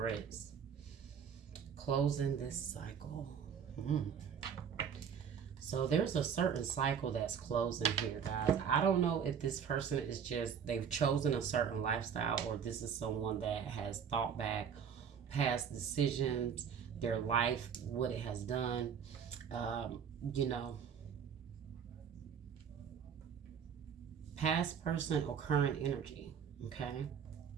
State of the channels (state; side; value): quieter; left; 7.5 dB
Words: Closing this cycle. So there's a certain cycle that's closing here, guys. I don't know if this person is just, they've chosen a certain lifestyle, or this is someone that has thought back past decisions, their life, what it has done. You know, past person or current energy, okay?